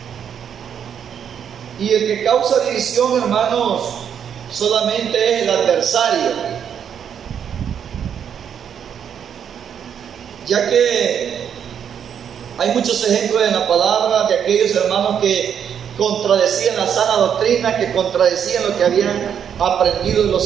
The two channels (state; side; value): quieter; left; 8.3 dB